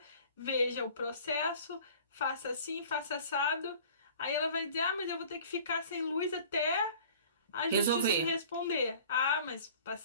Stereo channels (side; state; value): both; inverted; correlation -0.46